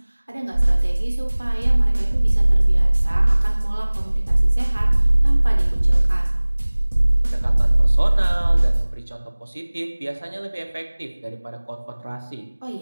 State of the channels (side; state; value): both; inverted; correlation -1.00